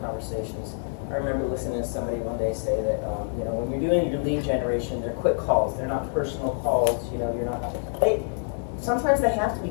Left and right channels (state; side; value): silent; right; 61 dB below the other